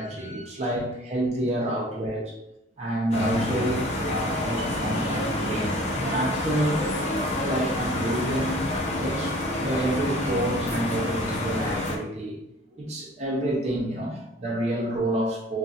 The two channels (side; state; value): both; normal; correlation 0.49